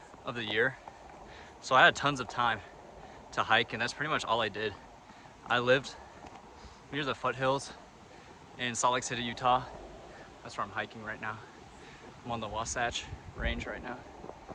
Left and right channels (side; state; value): both; identical; correlation 1.00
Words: of the year. So I had tons of time to hike, and that's pretty much all I did. I lived near the foothills in Salt Lake City, Utah. That's where I'm hiking right now. I'm on the Wasatch Range right now